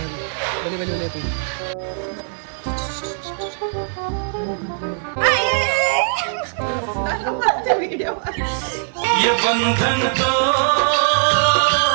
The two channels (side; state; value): left; silent; digital silence